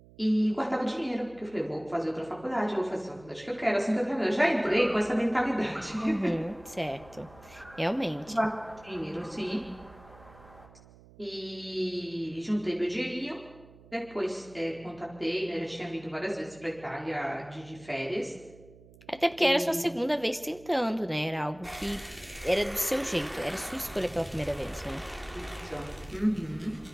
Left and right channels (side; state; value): right; noise; hum, 23 dB below the sound